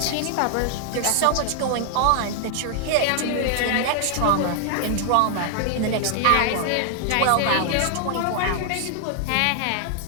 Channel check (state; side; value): different; both; correlation 0.00